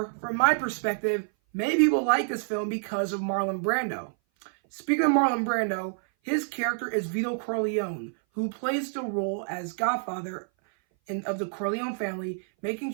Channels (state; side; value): silent; left; 57 dB below the other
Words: my perspective, many people like this film because of Marlon Brando. Speaking of Marlon Brando, his character is Vito Corleone, who plays the role as Godfather of the Corleone family, making